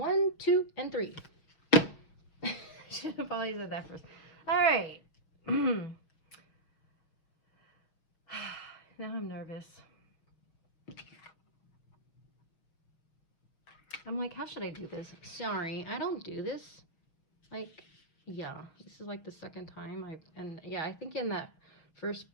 2, and 3. Should have probably said that first. All right. Now I'm nervous. I'm like, how should I do this? Sorry, I don't do this. Like, yeah, this is like the second time I think in that first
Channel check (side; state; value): right; late; 6.3 ms